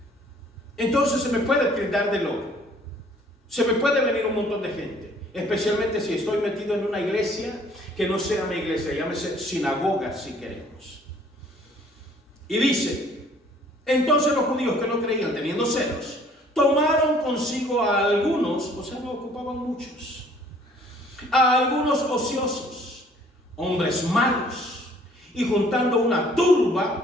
Entonces se me puede tildar de loco. Se me puede venir un montón de gente, especialmente si estoy metido en una iglesia que no sea mi iglesia, llámese sinagoga si queremos. Y dice, entonces los judíos que no creían, teniendo celos, tomaron consigo a algunos, o sea, no ocupaban muchos, a algunos ociosos, hombres malos, y juntando una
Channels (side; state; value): both; normal; correlation 0.57